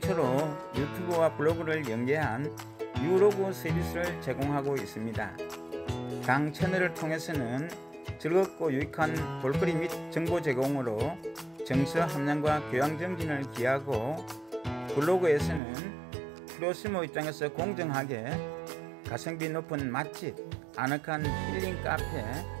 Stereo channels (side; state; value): left; drops out; at 15.6 s